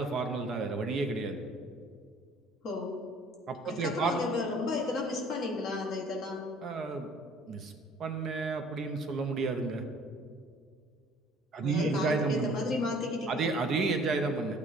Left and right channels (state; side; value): normal; both; correlation 0.54